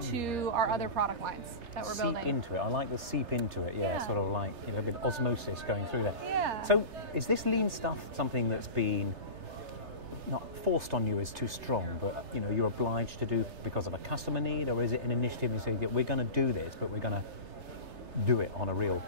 our other product lines that we're building. Seep into it. I like the seep into it. Yeah, sort of like, you know, a bit of osmosis going through there. Yeah. So is this lean stuff something that's been not forced on you is too strong, but you know you're obliged to do because of a customer need, or is it an initiative you say that we're going to do this, but we're going to do it on a real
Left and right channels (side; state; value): left; late; 3.3 ms